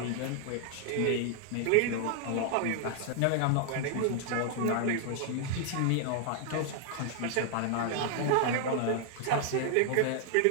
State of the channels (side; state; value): both; different; correlation 0.00